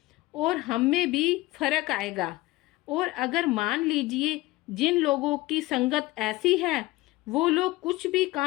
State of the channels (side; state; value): right; quieter; 19.5 dB